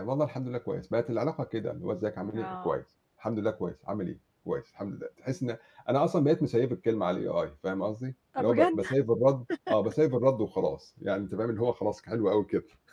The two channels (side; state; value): both; identical; correlation 1.00